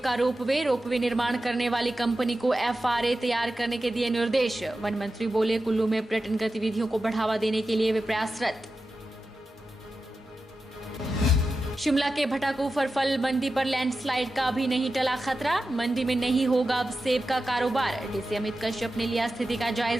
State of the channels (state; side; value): normal; both; correlation 0.92